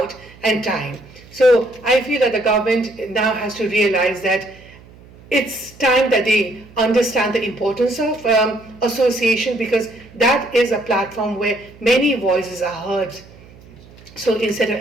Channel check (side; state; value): right; noise; hum, 23 dB below the sound